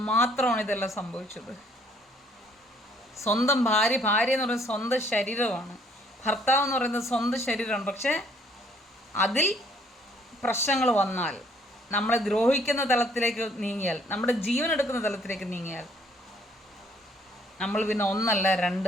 മാത്രമാണ് ഇതെല്ലാം സംഭവിച്ചത്. സ്വന്തം ഭാര്യ എന്ന് പറയുന്നത് സ്വന്തം ശരീരമാണ്, ഭർത്താവ് എന്ന് പറയുന്നത് സ്വന്തം ശരീരമാണ്. പക്ഷേ അതിൽ പ്രശ്നങ്ങൾ വന്നാൽ, നമ്മളെ ദ്രോഹിക്കുന്ന തലത്തിലേക്ക് നീങ്ങിയാൽ, നമ്മുടെ ജീവൻ എടുക്കുന്ന തലത്തിലേക്ക് നീങ്ങിയാൽ, നമ്മൾ പിന്നെ ഒന്നല്ല രണ്ട്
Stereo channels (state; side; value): normal; both; correlation 0.63